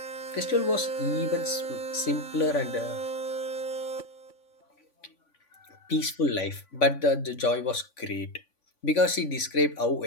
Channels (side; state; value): right; late; 3.5 ms